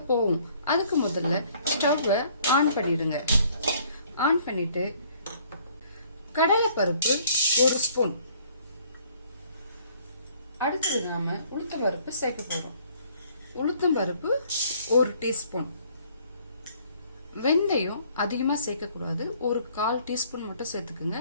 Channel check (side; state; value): both; inverted; correlation -0.60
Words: போவோம். அதுக்கு முதல்ல ஸ்டவ்வை ஆன் பண்ணிடுங்க. ஆன் பண்ணிட்டு கடலை பருப்பு 1 ஸ்பூன், அடுத்தது நாம உளுத்தம் பருப்பு சேர்க்க போறோம். உளுத்தம் பருப்பு 1 டீஸ்பூன். வெந்தயம் அதிகமா சேர்க்க கூடாது, ஒரு 1/4 டீஸ்பூன் மட்டும் சேர்த்துக்குங்க.